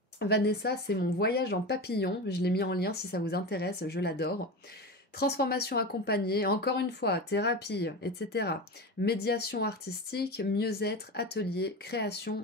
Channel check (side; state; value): both; normal; correlation 0.24